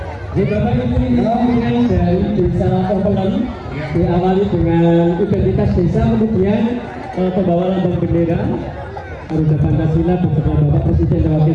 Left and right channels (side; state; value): both; identical; correlation 1.00